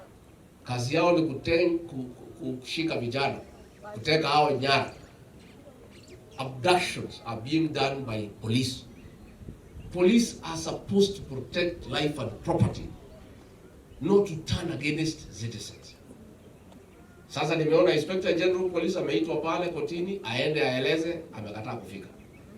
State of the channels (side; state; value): both; identical; correlation 1.00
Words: Kazi yao ni kushika vijana, kuteka hao nyara. Abductions are being done by police. Police are supposed to protect life and property, not to turn against citizens. Sasa nimeona Inspector General Police ameitwa pale kotini aende aeleze, amekataa kufika.